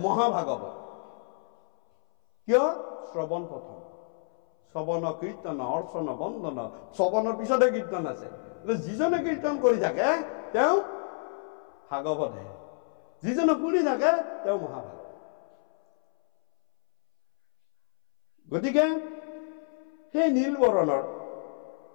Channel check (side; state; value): right; silent; 59 dB below the other